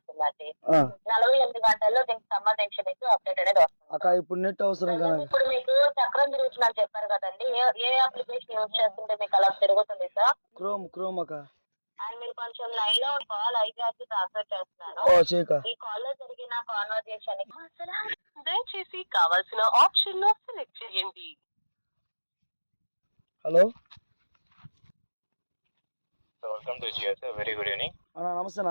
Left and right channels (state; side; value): inverted; both; correlation -1.00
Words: 48 గంటల్లో దీనికి సంబంధించి మీకు అప్డేట్ అనేది వస్తుంది. ఇప్పుడు నెట్ అవసరం కదా. ఇప్పుడు మీకు చక్రం తిరుగుతుందని చెప్పారు కదండి, ఏ అప్లికేషన్ యూజ్ చేస్తుంటే మీకు అలా తిరుగుతుంది సార్? క్రోమ్ అక్క. అండ్ మీరు కొంచెం లైన్ లో కాల్ ఐపీఆర్కి ట్రాన్స్ఫర్ చేస్తున్నాను. ఈ కాల్ లో జరిగిన కాన్వర్జేషన్ దయచేసి కావాల్సిన ఆప్షన్ లో సెలెక్ట్ చేయండి. Hello, welcome to Jio sir. Very good evening అన్నా.